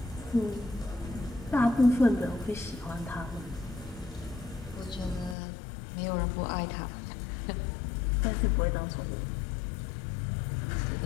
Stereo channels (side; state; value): right; drops out; at 5.4 s